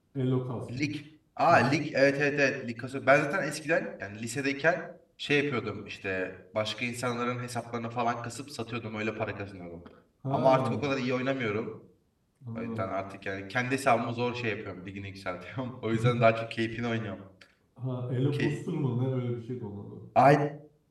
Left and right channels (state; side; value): identical; both; correlation 1.00